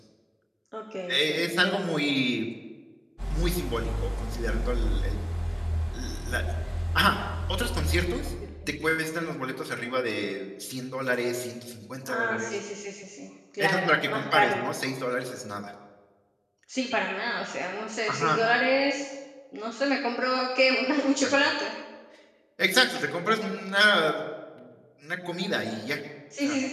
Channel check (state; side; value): identical; both; correlation 1.00